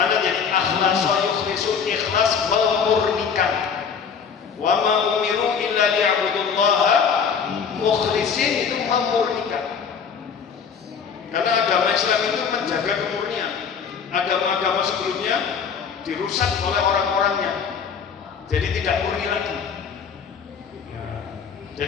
jadi akhlaso yukhlisu ikhlas memurnikan. Wa ma umiru illa liya'budullaha mukhlisin itu memurnikan. Karena agama Islam itu menjaga kemurnian. Agama-agama sebelumnya dirusak oleh orang-orangnya. Jadi tidak murni lagi.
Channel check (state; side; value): quieter; right; 6.5 dB